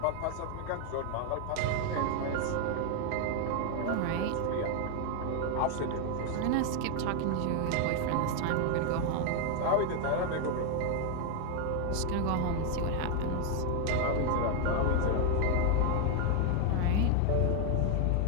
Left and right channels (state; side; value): different; both; correlation 0.00